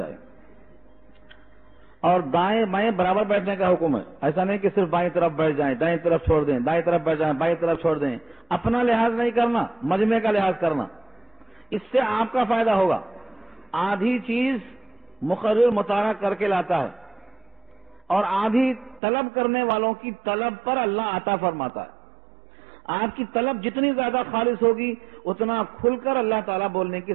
اور دائیں بائیں برابر بیٹھنے کا حکم ہے، ایسا نہیں کہ صرف بائیں طرف بیٹھ جائیں، دائیں طرف چھوڑ دیں، دائیں طرف بیٹھ جائیں، بائیں طرف چھوڑ دیں۔ اپنا لحاظ نہیں کرنا، مجمع کا لحاظ کرنا، اس سے آپ کا فائدہ ہوگا۔ آدھی چیز مقرر مطالعہ کر کے لاتا ہے اور آدھی طلب کرنے والوں کی طلب پر اللہ عطا فرماتا ہے۔ آپ کی طلب جتنی زیادہ خالص ہوگی اتنا کھل کر اللہ تعالیٰ بولنے کی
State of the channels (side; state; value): left; drops out; at 19.0 s